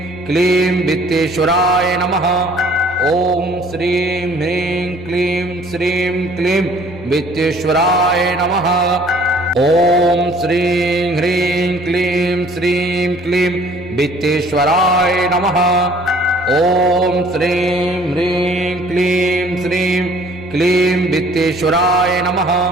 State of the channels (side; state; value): both; normal; correlation 0.55